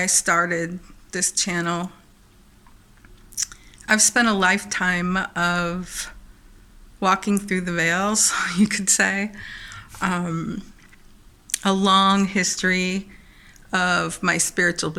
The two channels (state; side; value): identical; both; correlation 1.00